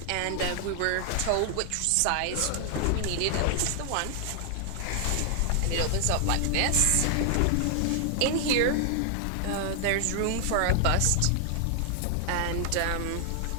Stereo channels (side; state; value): both; different; correlation 0.00